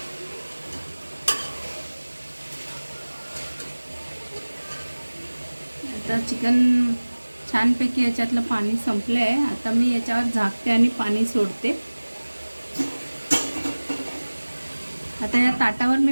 आता चिकन छानपैकी याच्यातलं पाणी संपलं आहे. आता मी याच्यावर झाकते आणि पाणी सोडते. आता या ताटावर मी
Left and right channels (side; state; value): both; inverted; correlation -1.00